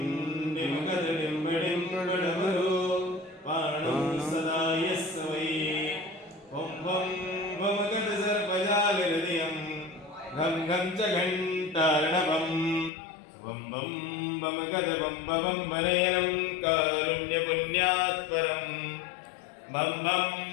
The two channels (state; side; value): drops out; right; at 12.9 s